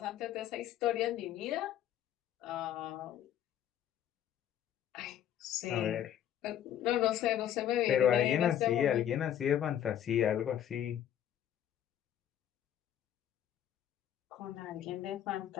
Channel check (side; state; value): right; quieter; 10.5 dB